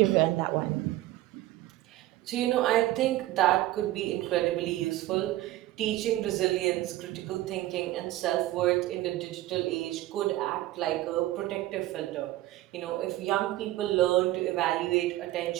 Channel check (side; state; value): left; quieter; 16.0 dB